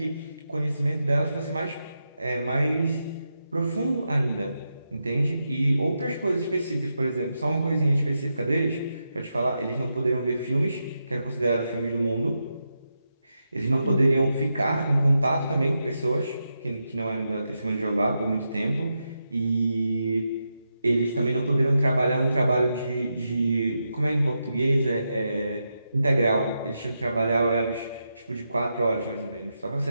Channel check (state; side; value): inverted; both; correlation -0.86